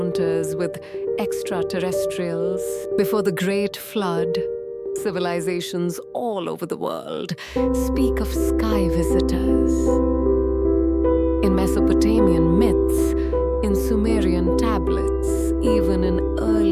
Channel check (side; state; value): both; identical; correlation 1.00